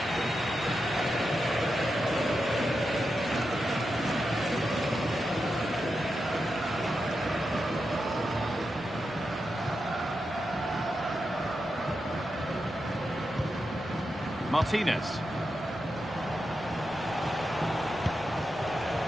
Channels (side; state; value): right; noise; rumble, 25 dB below the sound